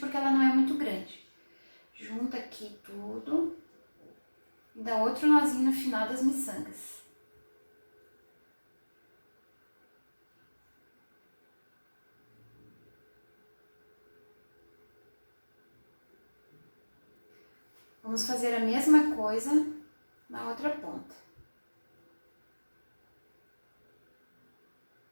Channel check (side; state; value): both; inverted; correlation -1.00